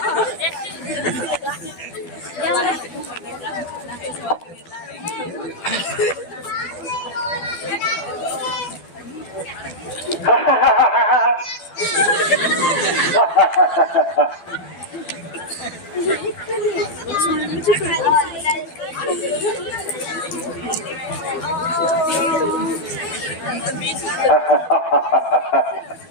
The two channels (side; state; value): right; late; 12 ms